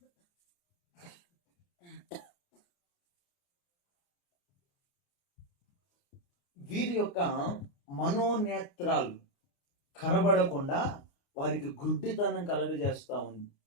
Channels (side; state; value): right; late; 29 ms